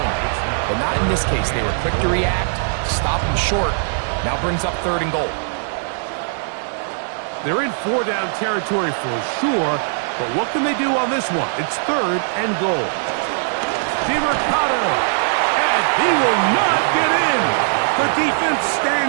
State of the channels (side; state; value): left; silent; 58 dB below the other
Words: But not in this case. They were quick to react, stop him short. Now brings up third and goal. They're in four-down territory for sure, but what can they do on this one? It's third and goal. DiMercato, and he will not get in. The defense